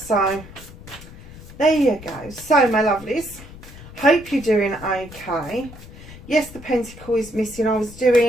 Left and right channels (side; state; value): left; noise; rumble, 17 dB below the sound